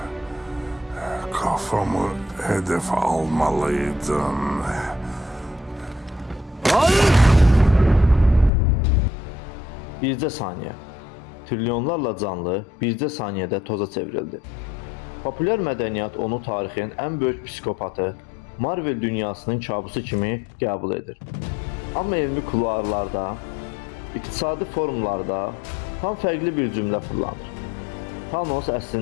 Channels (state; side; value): drops out; right; at 8.5 s